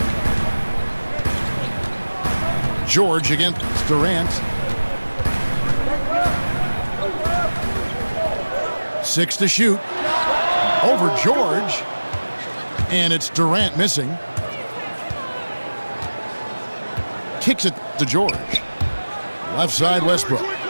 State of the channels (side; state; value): both; inverted; correlation -1.00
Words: George against Durant. 6 to shoot. Over George. And it's Durant missing. Kicks it to George. Left side, Westbrook.